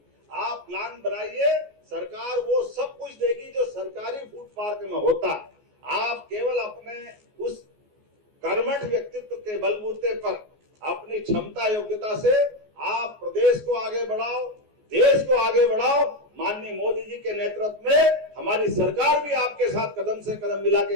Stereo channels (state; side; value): late; left; 14 ms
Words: आप प्लान बनाइए, सरकार वो सब कुछ देगी जो सरकारी फूड पार्क में होता है। आप केवल अपने उस कर्मठ व्यक्तित्व के बलबूते पर, अपनी क्षमता योग्यता से आप प्रदेश को आगे बढ़ाओ, देश को आगे बढ़ाओ। माननीय मोदी जी के नेतृत्व में हमारी सरकार भी आपके साथ कदम से कदम मिला के